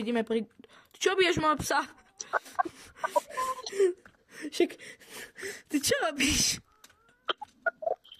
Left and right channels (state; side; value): identical; both; correlation 1.00